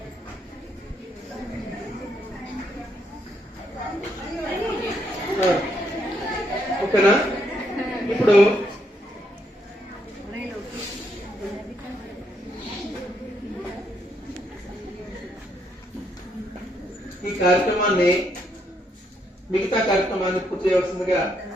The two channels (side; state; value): both; normal; correlation 0.75